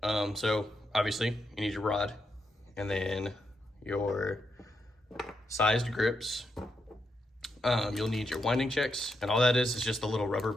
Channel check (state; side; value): normal; both; correlation 0.82